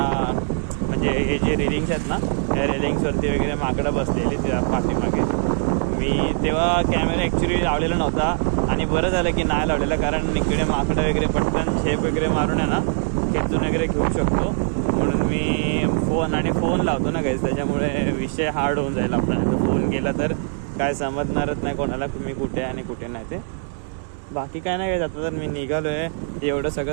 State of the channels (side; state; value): left; silent; digital silence